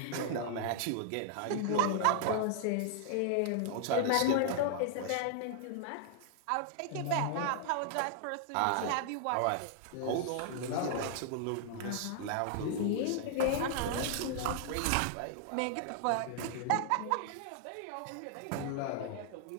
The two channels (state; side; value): different; both; correlation -0.01